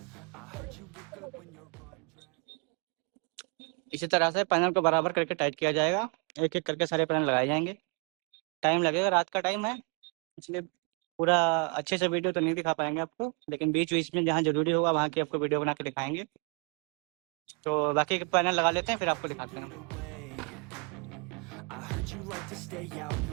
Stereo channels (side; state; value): left; quieter; 34.1 dB